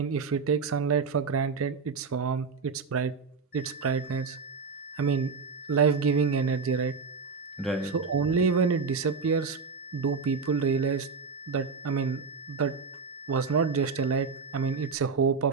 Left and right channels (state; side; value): quieter; left; 5.0 dB